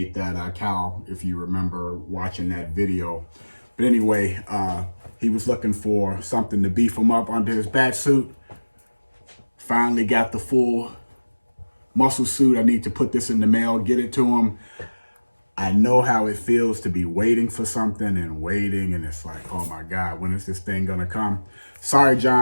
that cowl, if you remember watching that video. But anyway, he was looking for something to beef him up under his Batsuit. Finally got the full muscle suit. I need to put this in the mail, get it to him. I know how it feels to be waiting for something and it's like, oh my God, when is this thing gonna come? Sorry,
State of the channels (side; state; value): both; inverted; correlation -1.00